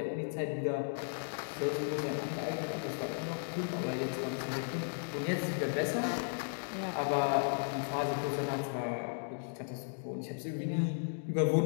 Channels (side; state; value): right; silent; digital silence